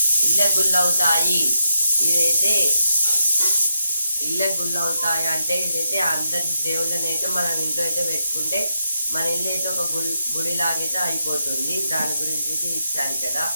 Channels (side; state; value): both; inverted; correlation -0.82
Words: ఇళ్ళ గుల్లవుతాయి. ఇదైతే ఇళ్ళ గుల్లవుతాయి అంటే ఇదైతే అందరి దేవుళ్ళని అయితే మనం ఇంట్లో అయితే పెట్టుకుంటే మన ఇల్లు అయితే ఒక గుడిలాగైతే అయిపోతుంది. దాని గురించి అయితే ఇచ్చారు కదా.